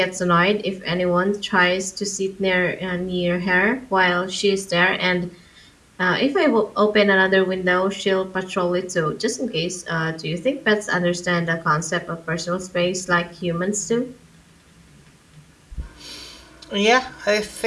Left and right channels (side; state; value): both; identical; correlation 1.00